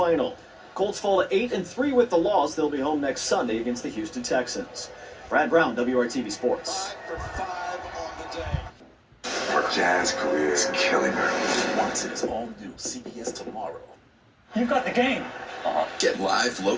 Colts fall to 8-3 with the loss. They'll be home next Sunday against the Houston Texans. Brad Brown, WRTV Sports. Her jazz career is killing her. Watch its all new CBS tomorrow. You got the game. Get live,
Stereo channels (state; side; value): identical; both; correlation 1.00